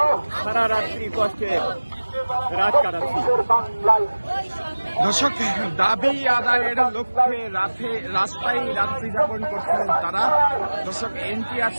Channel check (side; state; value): both; inverted; correlation -1.00